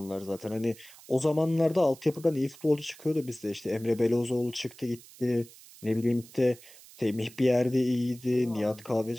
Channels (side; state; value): right; noise; hiss, 21 dB below the sound